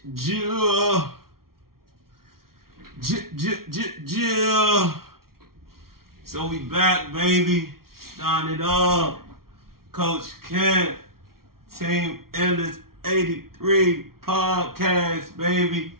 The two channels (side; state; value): left; late; 0.93 ms